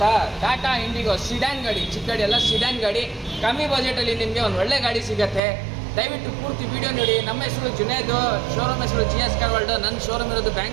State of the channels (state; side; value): drops out; left; at 5.4 s